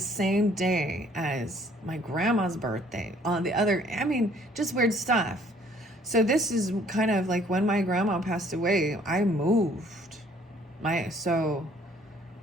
day as my grandma's birthday. On the other, just weird stuff. So this is kind of like when my grandma passed away, I moved. My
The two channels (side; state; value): both; normal; correlation 0.59